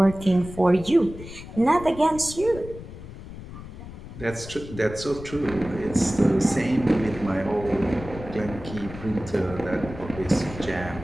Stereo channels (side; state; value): left; noise; rumble, 13 dB below the sound